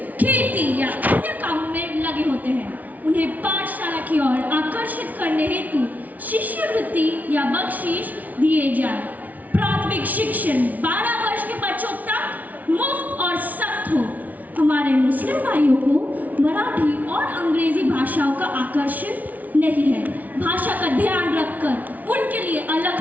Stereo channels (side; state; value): left; late; 0.076 ms